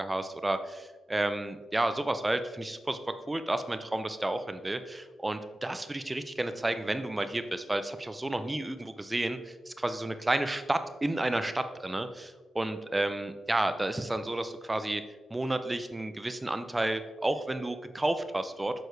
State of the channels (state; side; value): normal; both; correlation 0.97